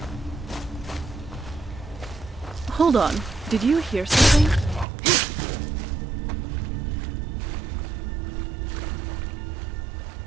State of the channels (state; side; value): drops out; left; at 4.9 s